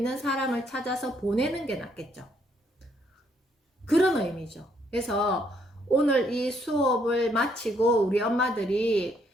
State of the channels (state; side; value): normal; both; correlation 0.70